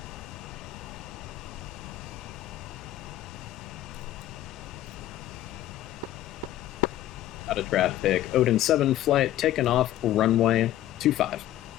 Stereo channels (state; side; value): quieter; right; 13.4 dB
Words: Out of traffic, Odin 7 Flight, taking off runway 25.